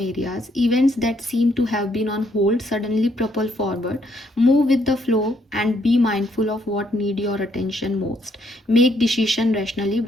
areas. Events that seem to have been on hold suddenly propel forward. Move with the flow and be mindful of what need your attention most. Make decision rationally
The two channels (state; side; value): normal; both; correlation 0.71